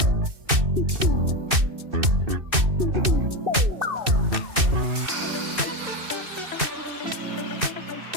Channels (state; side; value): late; left; 2.6 ms